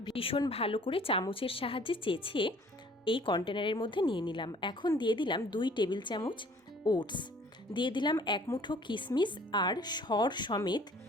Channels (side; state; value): both; normal; correlation 0.54